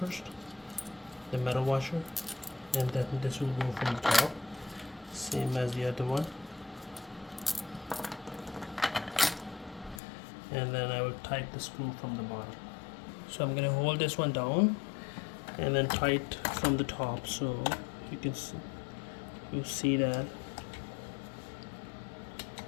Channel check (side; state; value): right; drops out; at 10.0 s